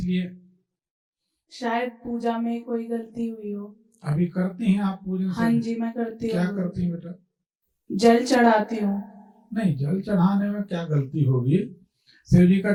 शायद पूजा में कोई गलती हुई हो। अभी करती हैं आप पूजन? हाँ जी, मैं करती हूँ। क्या करती हैं बेटा? जल चढ़ाती हूँ। नहीं, जल चढ़ाने में क्या गलती होगी? शिव जी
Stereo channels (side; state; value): both; identical; correlation 1.00